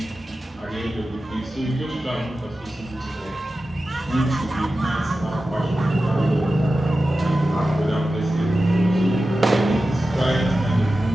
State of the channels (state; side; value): normal; both; correlation 0.93